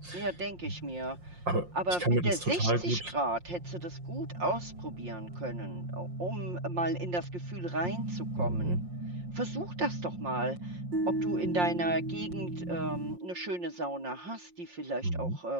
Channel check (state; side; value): late; left; 5.6 ms